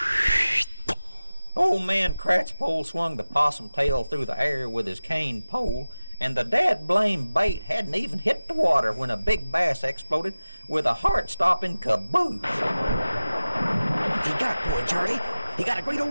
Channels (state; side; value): inverted; both; correlation -0.96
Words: Old man Cratchpole swung the possum tail through the air with his cane pole, and the dad-blamed bait hadn't even hit the water when a big bass exploded with a heart-stopping caboose. He got one, Charlie. He got a great